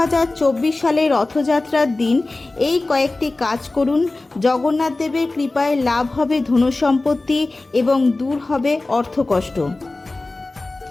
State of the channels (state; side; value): quieter; right; 3.1 dB